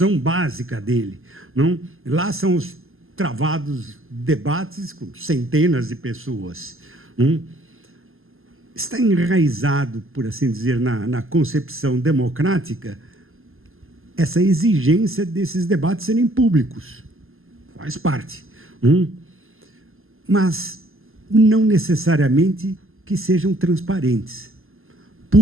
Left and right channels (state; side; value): late; left; 0.60 ms